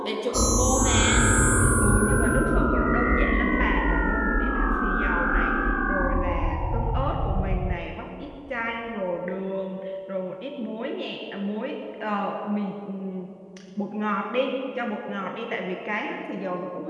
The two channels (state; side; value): identical; both; correlation 1.00